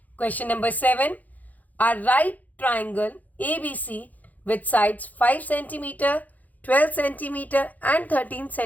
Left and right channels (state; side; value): late; right; 0.080 ms